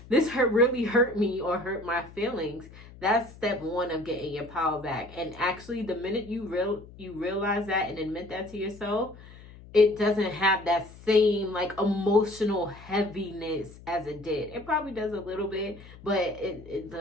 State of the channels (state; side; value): noise; left; hum, 19 dB below the sound